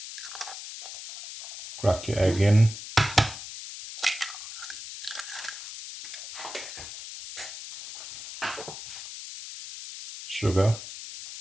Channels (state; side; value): noise; left; hiss, 11 dB below the sound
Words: Crack your egg in. Sugar.